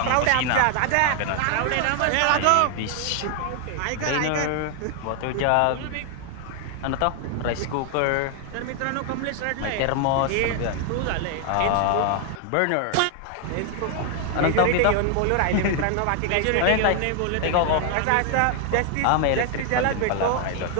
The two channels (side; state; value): both; different; correlation 0.00